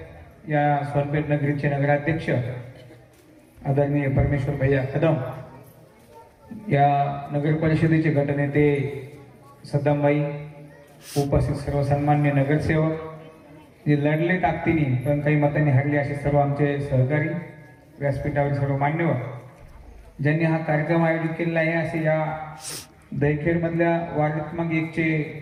या सोनपेठ नगरीचे नगराध्यक्ष आदरणीय परमेश्वर भैया कदम, या नगर परिषदेचे गटनेते सद्दामबाई, उपस्थित सर्व सन्मान्य नगरसेवक, जे लढले ताकदीने पण काही मतांनी हरले असे सर्व आमचे सहकारी, व्यासपीठावर सर्व मान्यवर ज्यांनी हा कार्यक्रम आयोजित केलेला आहे, असे या दहीखेडमधल्या वार्ड क्रमांक 1चे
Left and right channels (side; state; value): both; identical; correlation 1.00